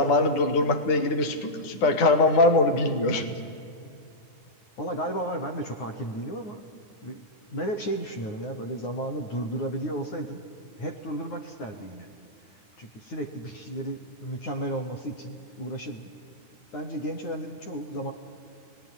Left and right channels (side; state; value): right; late; 9.9 ms